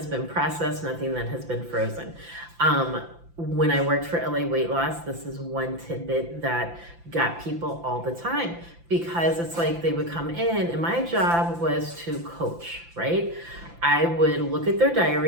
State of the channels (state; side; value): late; left; 5.9 ms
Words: been processed, nothing that has been frozen. When I worked for LA Weight Loss, this is one tidbit that got people all the time, because it's like they would come in and my job was to coach, right? I would look at their